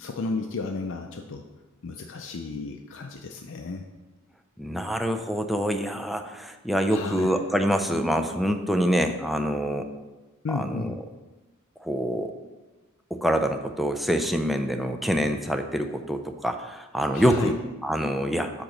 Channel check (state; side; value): normal; both; correlation 0.79